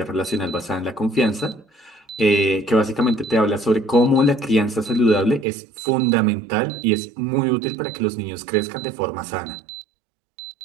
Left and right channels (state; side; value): drops out; left; at 5.5 s